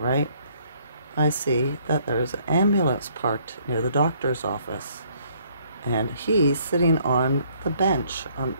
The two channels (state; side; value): inverted; both; correlation -0.64